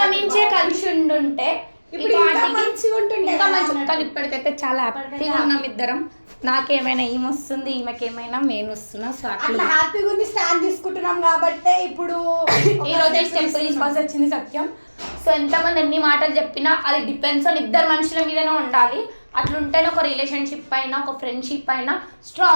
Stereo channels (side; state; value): both; inverted; correlation -1.00